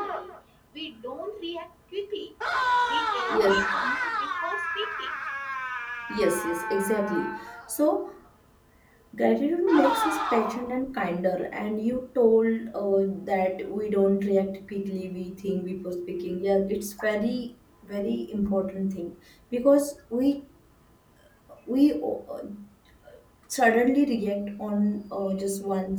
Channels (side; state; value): both; identical; correlation 1.00